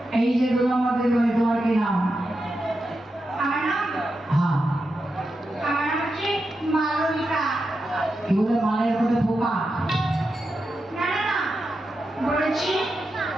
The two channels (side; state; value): both; normal; correlation 0.88